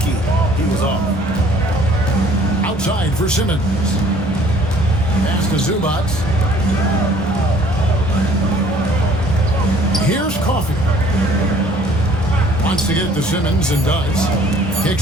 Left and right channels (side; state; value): both; normal; correlation 0.56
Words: he was off. Outside for Simmons. Pass to Zubac. Here's Coffee. Wants to get it to Simmons and does.